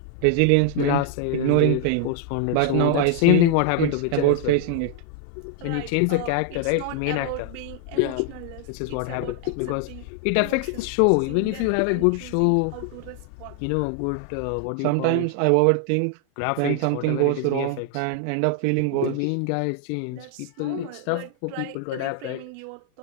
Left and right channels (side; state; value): both; different; correlation 0.00